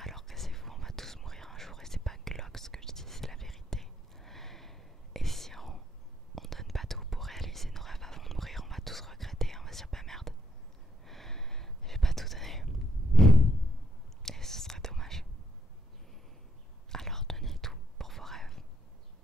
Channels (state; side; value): normal; both; correlation 0.75